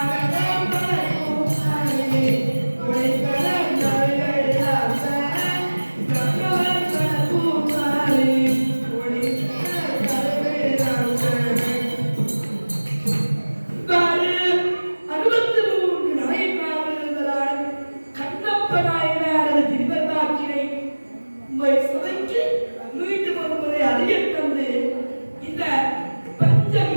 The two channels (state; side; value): inverted; both; correlation -1.00